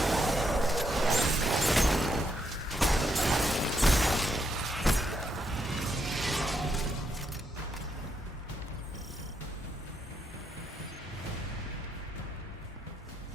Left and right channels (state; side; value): normal; both; correlation 0.78